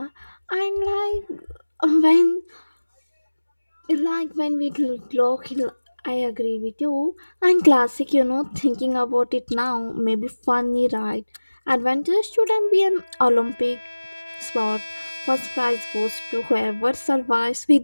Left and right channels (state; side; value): inverted; both; correlation -1.00